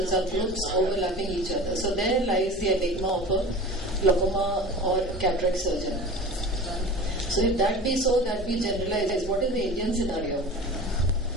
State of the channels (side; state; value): both; normal; correlation 0.36